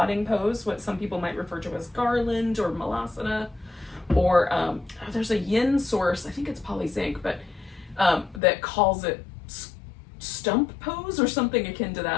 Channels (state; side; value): drops out; right; at 8.4 s